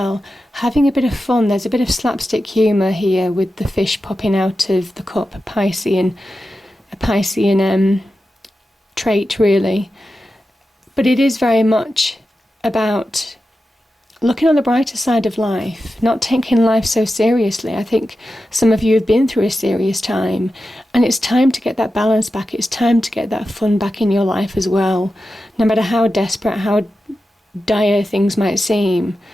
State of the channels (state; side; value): normal; both; correlation 0.92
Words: Having a bit of fun. There's a bit of slapstick humour here with the fish popping out of the cup, a Piscean trait, really. But it is very much about looking on the brighter side of life, not taking life so seriously. I think some of you have been through a serious time, and it's time to get that balance back. It's time to get that fun back in your life as well. No matter how desperate, how dire things might seem,